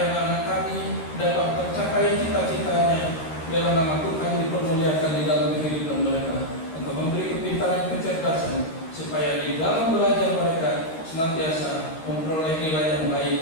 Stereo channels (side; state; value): right; late; 12 ms